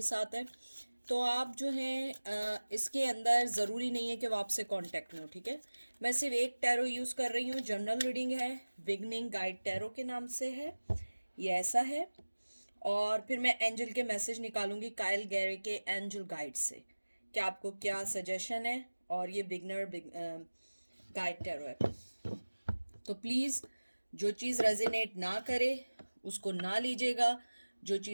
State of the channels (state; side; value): inverted; both; correlation -1.00